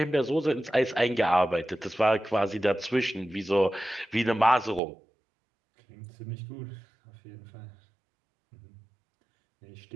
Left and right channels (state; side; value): drops out; left; at 4.8 s